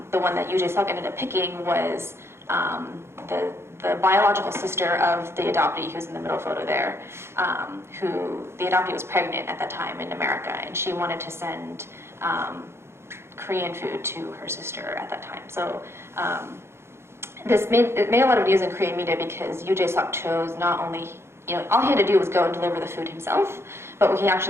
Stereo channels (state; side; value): late; left; 0.12 ms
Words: the one that Yoo Jae-suk ended up picking was the biological sister of the adoptee who's in the middle photo there, who the adoptee was pregnant at that time in America, and she wanted to send Korean food to her sister at that time. So it made a lot of news in Korean media because Yoo Jae-suk chose not only, all he had to do was go and deliver the food himself, but what he